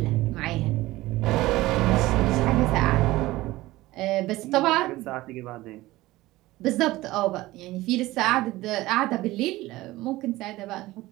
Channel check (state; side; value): quieter; left; 18.1 dB